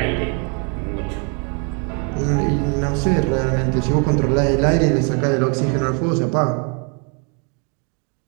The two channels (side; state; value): left; quieter; 37.3 dB